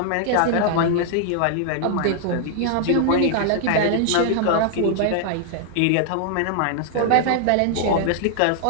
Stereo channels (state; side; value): different; both; correlation -0.01